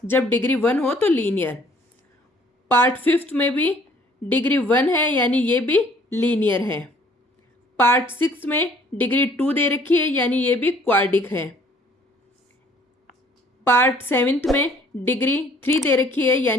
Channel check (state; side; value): normal; both; correlation 0.58